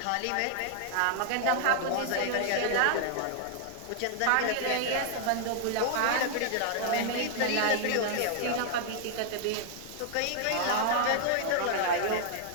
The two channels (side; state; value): both; different; correlation 0.00